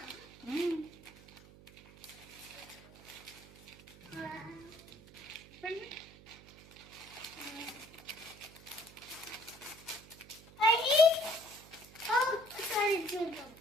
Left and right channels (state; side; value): noise; right; hum, 20 dB below the sound